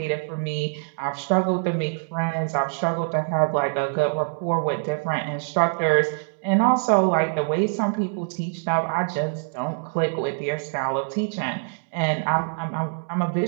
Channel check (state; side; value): silent; left; digital silence